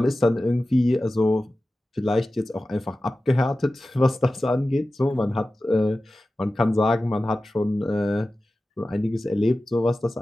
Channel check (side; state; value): both; normal; correlation 0.95